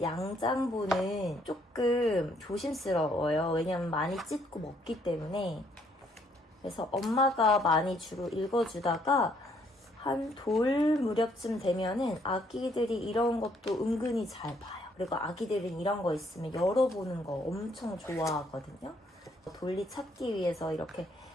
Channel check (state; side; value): normal; both; correlation 0.68